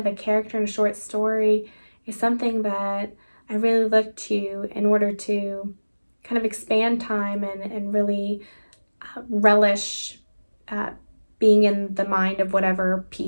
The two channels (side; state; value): both; inverted; correlation -1.00